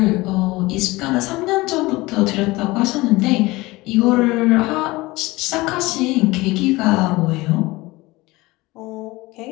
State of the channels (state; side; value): quieter; right; 20.9 dB